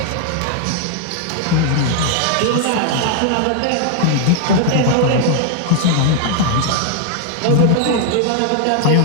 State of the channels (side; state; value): both; different; correlation 0.00